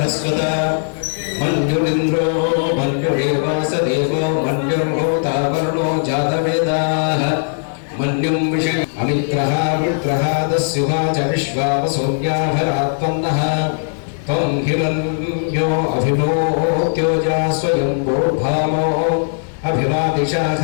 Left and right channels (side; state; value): right; silent; digital silence